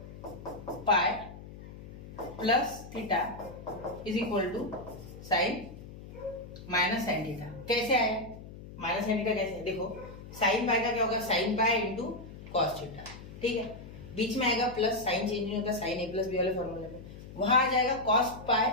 pi plus theta is equal to sine minus sine theta. कैसे आया माइनस साइन थीटा? कैसे? देखो साइन पाई का क्या होगा, sine pi into cos theta. ठीक है, बीच में आएगा प्लस, साइन चेंज नहीं होता साइन a प्लस बी वाले फॉर्मूले में। वहां आ जाएगा कॉस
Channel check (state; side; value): noise; left; hum, 14 dB below the sound